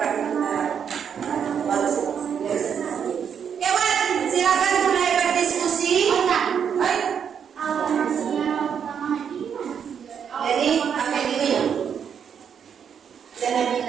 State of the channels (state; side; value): quieter; left; 7.6 dB